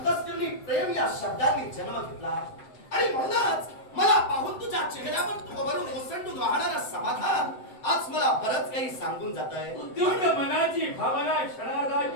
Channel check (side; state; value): right; late; 7.8 ms